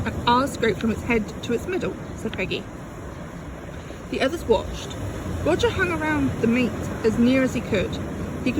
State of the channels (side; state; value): both; identical; correlation 1.00